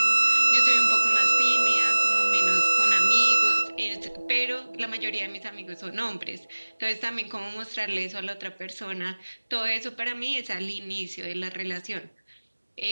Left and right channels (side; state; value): both; inverted; correlation -1.00